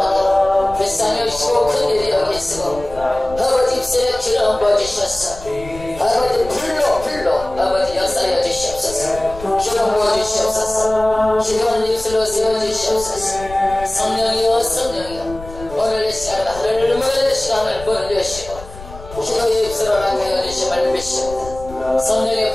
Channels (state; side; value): noise; left; rumble, 15 dB below the sound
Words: 불쌍히 여기시고 큰일이 여기시고 아버지 입술에 기름 부어주셨어. 아버지 불로 아버지 역사하여 주시옵소서. 기름 부어주시옵소서. 기도하는 입술로 세워주시옵소서. 성령이여 오늘 이 시간에 하늘을 멀리 시간을 벌려주시고 기도의 입술로 나가여 주심을 믿습니다. 성령의